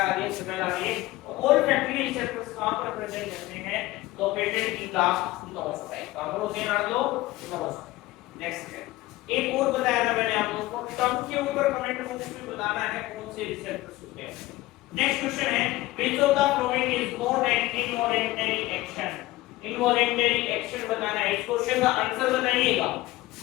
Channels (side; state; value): right; quieter; 18.2 dB